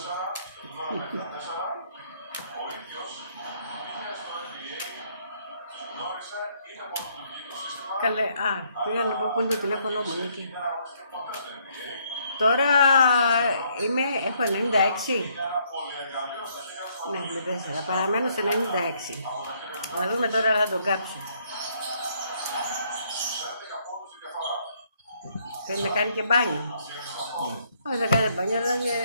Ο ίδιος πήγε στο NBA, τους γνώρισε, είναι πρωτοτουργικό σύστημα. Καλέ, πήγα να πω που είναι το τηλέφωνο μου, Νίκη. Δεν αγωνιστεί ποτέ στο NBA. Τώρα έχω 96. Ένα πολυεργαλείο στα χέρια του. Ναι, με 4. Παραμένω σε 96. Να δούμε τώρα να τον κάψω. 11 πόντους η διαφορά. Θέλει να κάνει και μπάνιο. Όχι, δεν κάνει μπάνιο, αλλά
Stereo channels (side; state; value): both; inverted; correlation -0.69